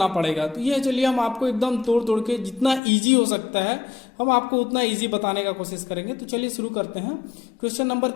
पड़ेगा। तो ये चलिए हम आपको एकदम तोड़ तोड़ के जितना इजी हो सकता है हम आपको उतना इजी बताने का कोशिश करेंगे। तो चलिए शुरू करते हैं क्वेश्चन नंबर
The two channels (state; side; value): drops out; right; at 2.8 s